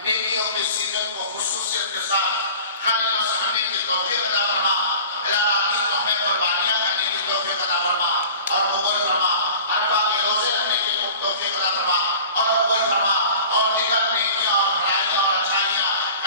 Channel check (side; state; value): both; inverted; correlation -0.42